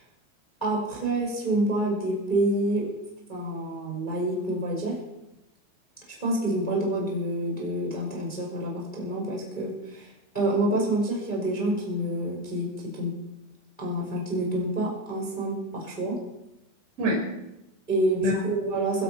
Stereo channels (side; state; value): right; late; 2.3 ms